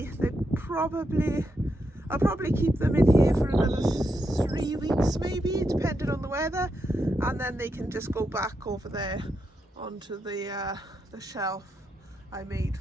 I'll probably keep them in here for another 3 weeks maybe, depending on the weather, and then they can just go back over there onto the shelf I made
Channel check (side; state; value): both; normal; correlation 0.83